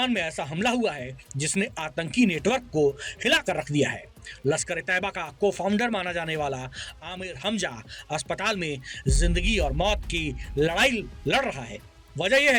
में ऐसा हमला हुआ है जिसने आतंकी नेटवर्क को हिलाकर रख दिया है। लश्कर-ए-तैयबा का को फाउंडर माना जाने वाला आमिर हमजा अस्पताल में जिंदगी और मौत की लड़ाई लड़ रहा है। वजह यह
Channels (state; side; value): identical; both; correlation 1.00